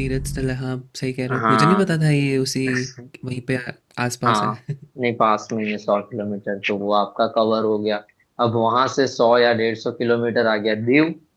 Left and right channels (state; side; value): identical; both; correlation 1.00